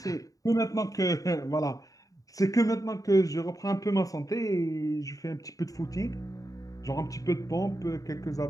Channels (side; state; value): right; late; 0.17 ms